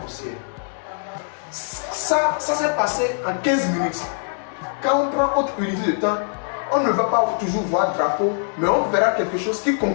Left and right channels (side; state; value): right; silent; 64 dB below the other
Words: haussière. Ça s'est passé en 15 minutes. Quand on prend autre unité de temps, on ne va pas toujours voir drapeau, mais on verra quelque chose qui